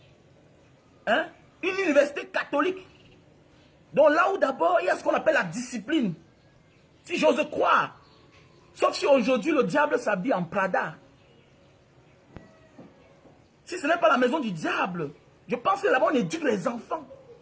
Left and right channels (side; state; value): both; identical; correlation 1.00